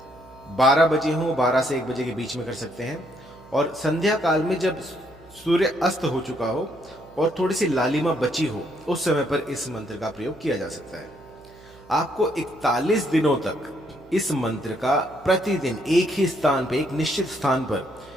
12 बजे हो, 12 से 1 बजे के बीच में कर सकते हैं। और संध्या काल में जब सूर्य अस्त हो चुका हो और थोड़ी सी लालिमा बची हो, उस समय पर इस मंत्र का प्रयोग किया जा सकता है। आपको 41 दिनों तक इस मंत्र का प्रतिदिन एक ही स्थान पर, एक निश्चित स्थान पर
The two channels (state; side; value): noise; right; hum, 25 dB below the sound